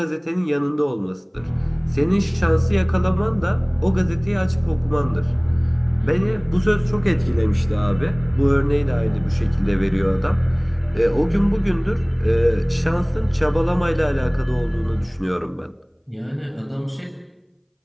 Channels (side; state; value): both; identical; correlation 1.00